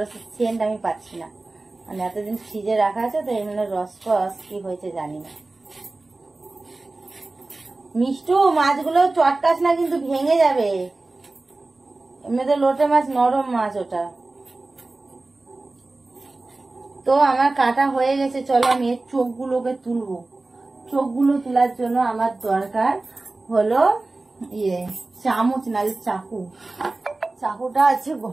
সেন্ট আমি পাচ্ছি না, মানে এতদিন ফ্রিজে রাখা আছে তো, এই জন্য রস কি হয়েছে জানি না। মিষ্টু, মাছগুলো চটকাস না, কিন্তু ভেঙে যাবে। এমনিতে লোটে মাছ নরম মাছ ওটা। তো আমার কাটা হয়ে গেছে, চলো আমি এর চোখগুলোকে তুলবো। চোখগুলো তোলার জন্য আমার দরকার হলো চামচ, না চাকু। চাকুটা আছে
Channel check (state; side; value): quieter; left; 3.2 dB